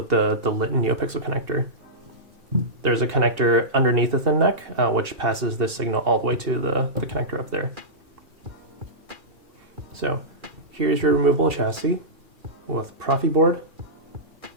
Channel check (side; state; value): left; late; 2.7 ms